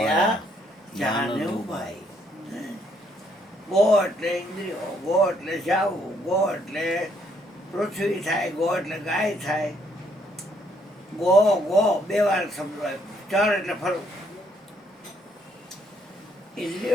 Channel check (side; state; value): both; normal; correlation 0.69